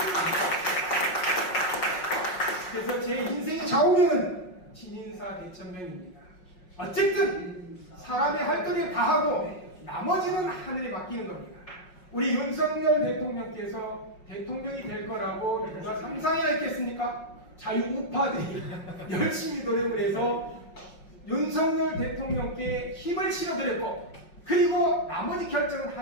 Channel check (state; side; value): late; right; 5.5 ms